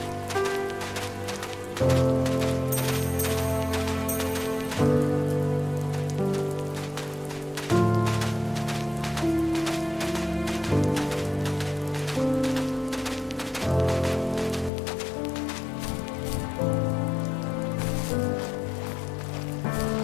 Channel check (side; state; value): right; drops out; at 14.7 s